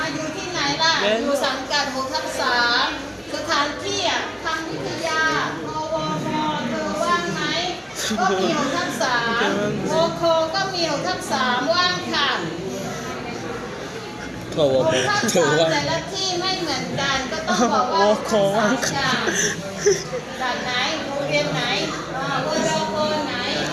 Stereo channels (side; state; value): both; identical; correlation 1.00